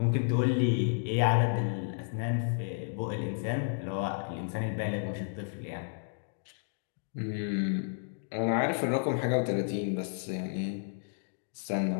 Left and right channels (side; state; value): right; silent; digital silence